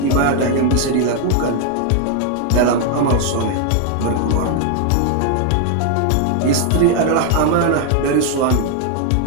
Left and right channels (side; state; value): both; different; correlation 0.00